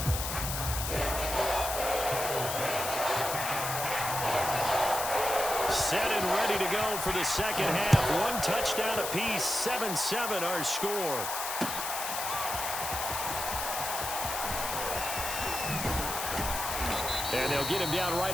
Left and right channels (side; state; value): left; noise; hiss, 4 dB below the sound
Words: Set and ready to go for the second half. One touchdown apiece, 7-7 our score. And they'll get him down